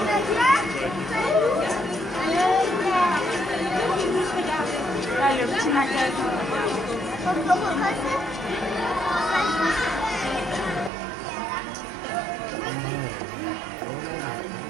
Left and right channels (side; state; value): left; drops out; at 10.9 s